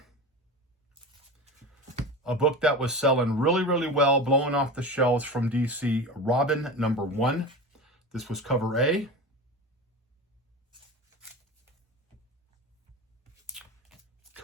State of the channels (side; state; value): both; normal; correlation 0.29